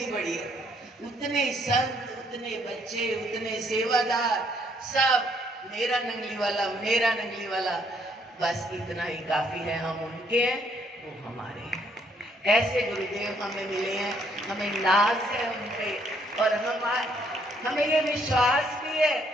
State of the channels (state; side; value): normal; both; correlation 0.69